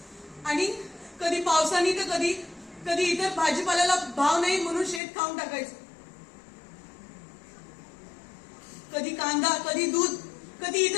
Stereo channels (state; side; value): drops out; right; at 5.0 s